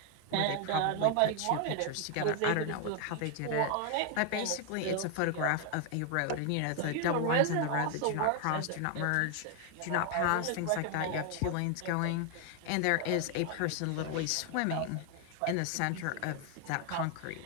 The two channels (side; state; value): both; different; correlation 0.00